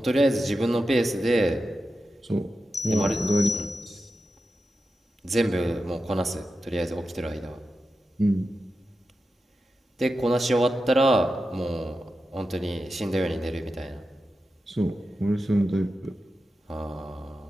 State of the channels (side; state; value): both; normal; correlation 0.91